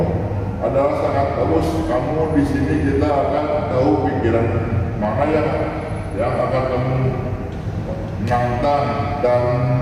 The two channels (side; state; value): both; identical; correlation 1.00